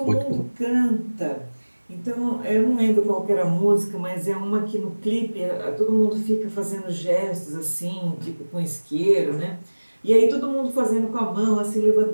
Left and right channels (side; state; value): both; inverted; correlation -1.00